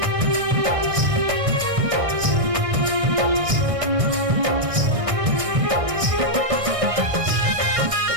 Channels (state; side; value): late; left; 1.6 ms